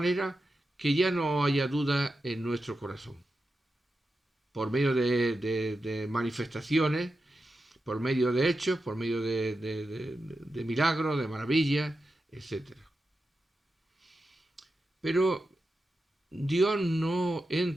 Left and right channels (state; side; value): normal; both; correlation 0.90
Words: que ya no haya duda en nuestro corazón, por medio de manifestaciones, por medio de hechos, por medio de milagros, de maravillas, etc. Pero Dios no